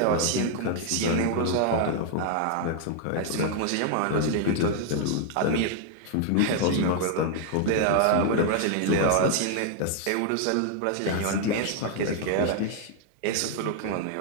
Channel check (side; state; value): both; different; correlation 0.00